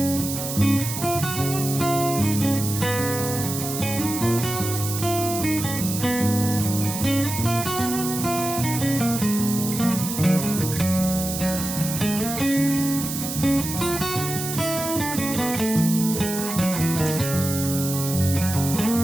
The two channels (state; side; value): noise; right; hiss, 6 dB below the sound